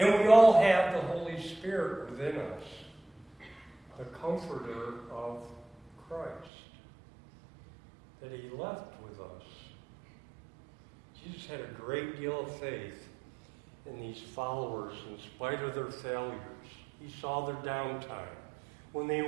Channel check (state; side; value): drops out; left; at 6.5 s